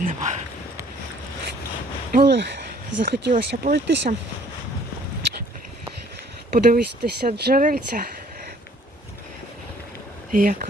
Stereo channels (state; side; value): normal; both; correlation 0.58